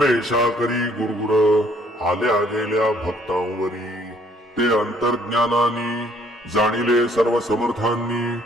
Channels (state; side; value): normal; both; correlation 0.63